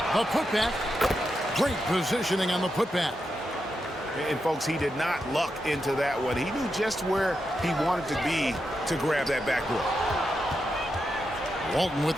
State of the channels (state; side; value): normal; both; correlation 0.86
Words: The putback. Great positioning on the putback. And folks, he did not luck into that one. He knew just where he wanted to be to grab that backboard. Walton with